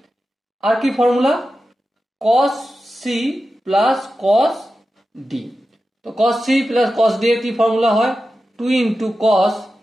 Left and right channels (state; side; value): normal; both; correlation 0.92